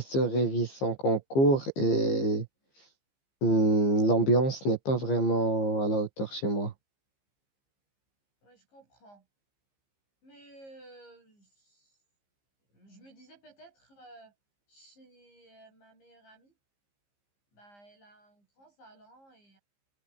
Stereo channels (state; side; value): late; right; 15 ms